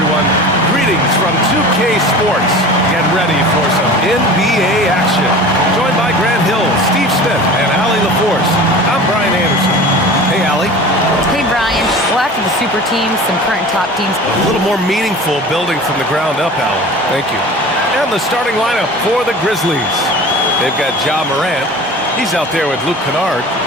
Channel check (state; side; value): normal; both; correlation 0.38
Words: Greetings from 2K Sports. Get ready for some NBA action. Joined by Grant Hill, Steve Smith, and Allie LaForce. I'm Brian Anderson. Hey, Allie. Hey, Brian. Well, after the super teams, some current top teams. A little more meaningful building from the ground up, Allie. Thank you. And the starting lineup for the Grizzlies. They've got Ja Morant. He's out there with Luke Kennard.